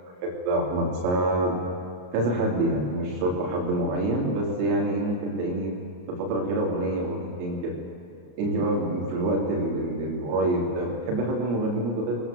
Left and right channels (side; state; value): left; late; 34 ms